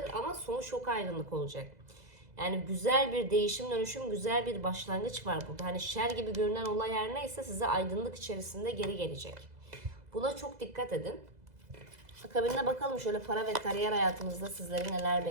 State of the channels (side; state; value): left; late; 2.0 ms